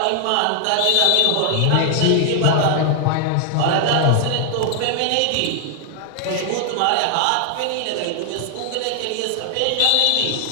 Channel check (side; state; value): both; different; correlation 0.00